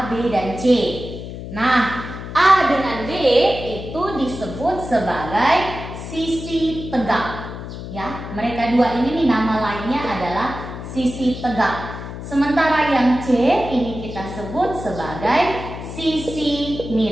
B, dan C. Nah, A dengan B itu disebut sebagai sisi tegak. Ya, mereka dua ini nih nama lainnya adalah sisi tegak. Sementara yang C ini kita sebut sebagai sisi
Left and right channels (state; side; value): noise; left; hum, 9 dB below the sound